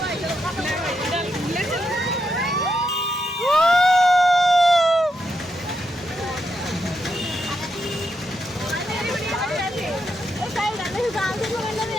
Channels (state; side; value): normal; both; correlation 0.82